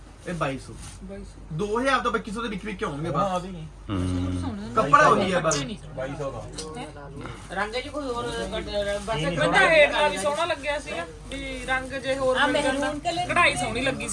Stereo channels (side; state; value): both; identical; correlation 1.00